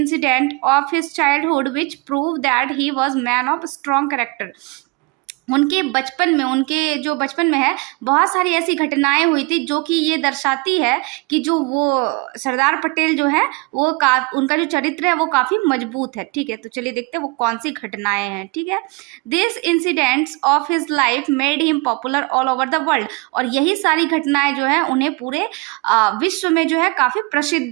of his childhood which prove that he was man of strong character। उनके बचपन में, उनके जो बचपन में है, बहुत सारी ऐसी घटनाएं हुई थी जो कि ये दर्शाती है कि जो वो सरदार पटेल जो है वो उनका जो चरित्र है वो काफ़ी मजबूत है। ठीक है, तो चलिए देखते हैं वो कौन सी घटनाएं हैं। ठीक है, this incidents of his life made him popular all over the world, और यही सारी घटनाएं जो है उन्हें पूरे विश्व में जो है काफ़ी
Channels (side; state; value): left; quieter; 26.9 dB